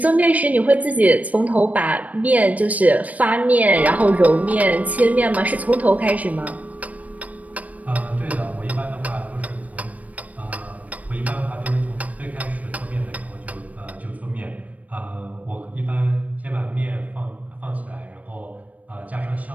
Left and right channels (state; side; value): late; left; 0.071 ms